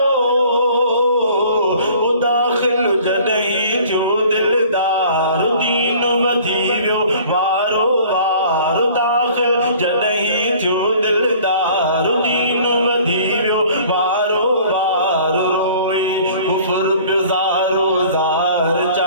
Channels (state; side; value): inverted; both; correlation -0.50